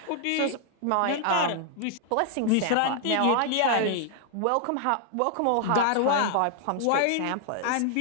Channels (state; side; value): different; both; correlation 0.00